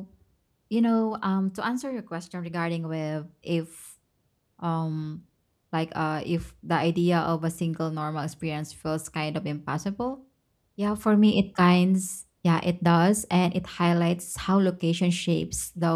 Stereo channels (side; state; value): both; identical; correlation 1.00